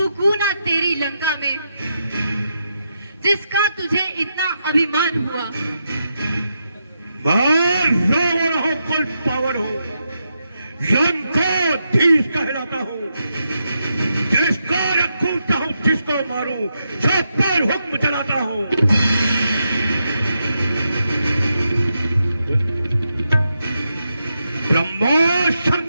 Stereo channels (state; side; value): inverted; both; correlation -0.84